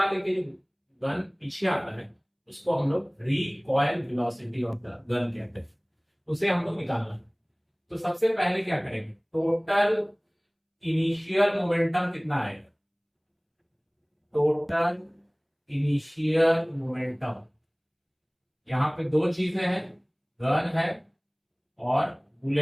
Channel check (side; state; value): both; identical; correlation 1.00